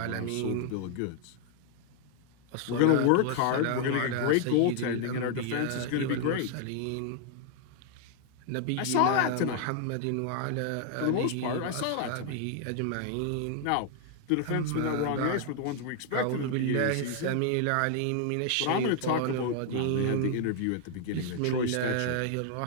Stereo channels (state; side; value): different; both; correlation 0.00